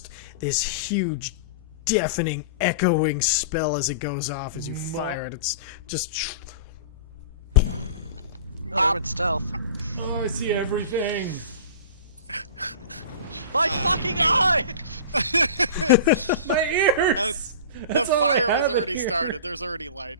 this huge deafening, echoing spell as it goes off as you fire it. It's just Oh, in stealth. Oh, I see everything. My fucking eye! My ears. The That's all I fire have was in already here. started. There's already light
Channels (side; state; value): both; inverted; correlation -0.36